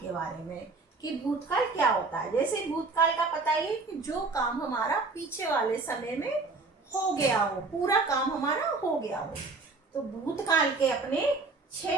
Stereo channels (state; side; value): quieter; left; 3.8 dB